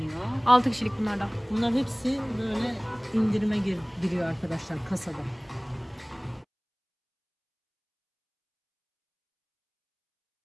6 kişilik bunlar da. Bunlar hepsi böyle indirime giriyor arkadaşlar kasada.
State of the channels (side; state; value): both; identical; correlation 1.00